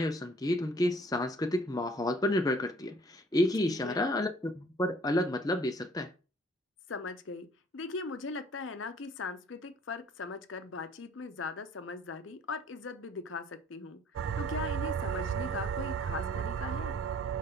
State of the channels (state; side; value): normal; both; correlation 0.56